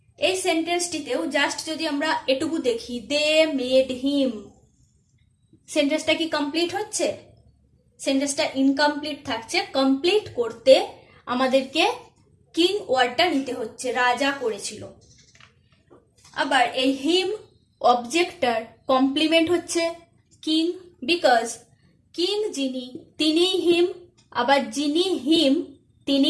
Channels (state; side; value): identical; both; correlation 1.00